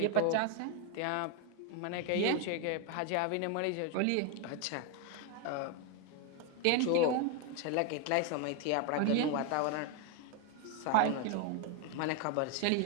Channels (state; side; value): different; both; correlation 0.01